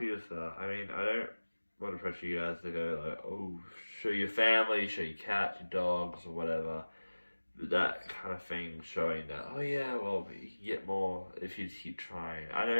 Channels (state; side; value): inverted; both; correlation -1.00